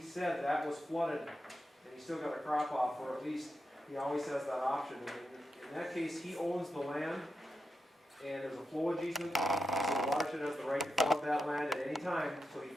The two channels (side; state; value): both; normal; correlation 0.87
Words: that was flooded, and he still got a crop off, or at least he always has that option. In that case, he owns the land, and there's a flowage easement, so the watershed has the right to flood that land at any time, so he